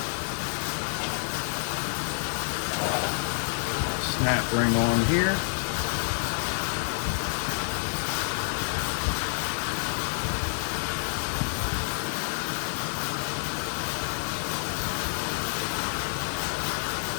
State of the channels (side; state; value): right; silent; 59 dB below the other